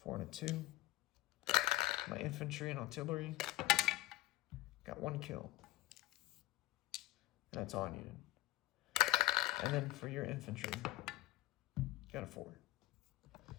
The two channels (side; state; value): right; quieter; 18.4 dB